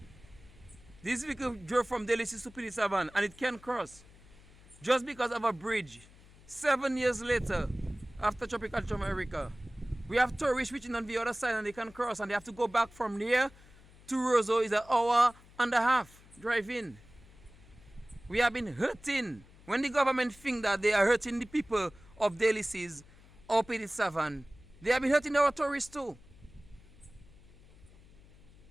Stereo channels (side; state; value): left; noise; hum, 24 dB below the sound